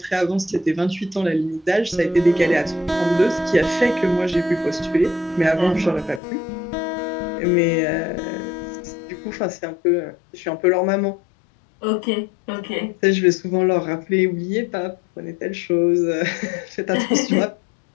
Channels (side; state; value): right; drops out; at 6.2 s